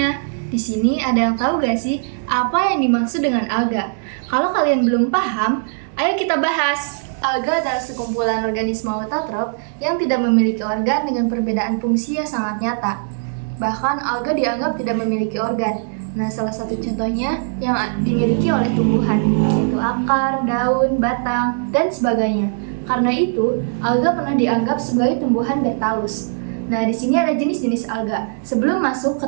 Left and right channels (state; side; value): silent; left; digital silence